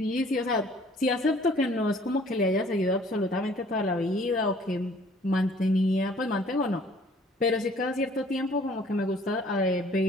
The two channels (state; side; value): normal; both; correlation 0.56